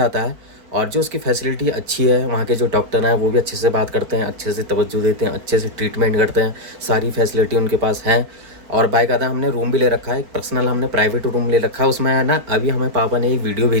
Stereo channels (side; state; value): left; late; 4.9 ms